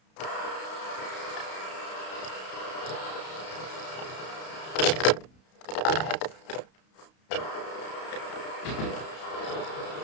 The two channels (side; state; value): right; late; 32 ms